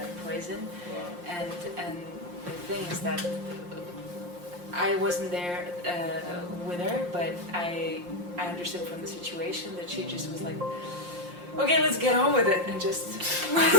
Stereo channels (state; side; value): late; left; 5.7 ms